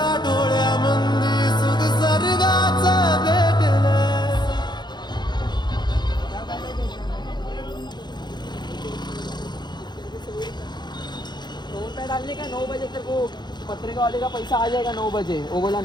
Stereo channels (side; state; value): right; late; 0.21 ms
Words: डोळ्यामंदी सुख सर्गाचं भेटल। ₹2 डालने का 9 बजे तेरे को पत्रिका वाले का पैसा आ जाएगा 9 बजे। वो बोला